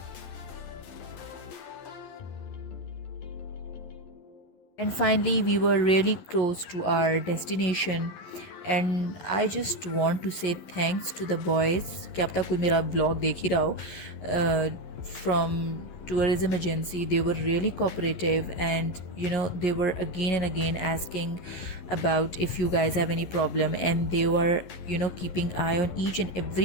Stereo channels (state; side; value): late; right; 11 ms